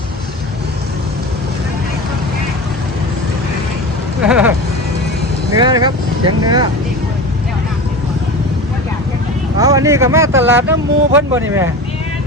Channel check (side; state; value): both; normal; correlation 0.30